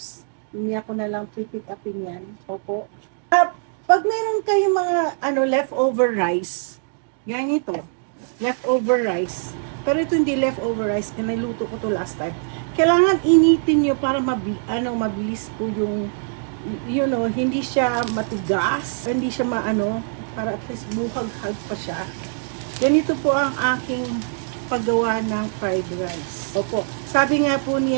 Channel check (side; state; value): left; silent; digital silence